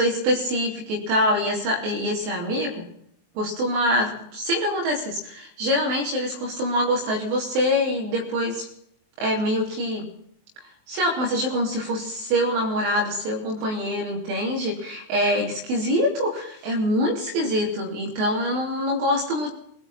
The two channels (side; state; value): left; late; 23 ms